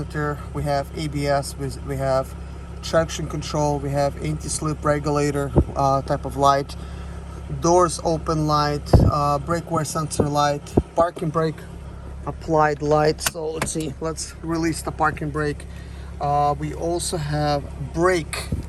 we have ABS, we have traction control, we have anti-slip regulator type of light, doors open light, brake wear sensor light, parking brake applied light. So let's see, let's release the parking brake. We also have brake,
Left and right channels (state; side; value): identical; both; correlation 1.00